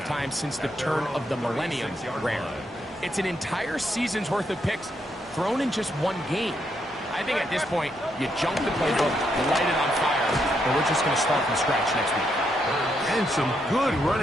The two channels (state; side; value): normal; both; correlation 0.78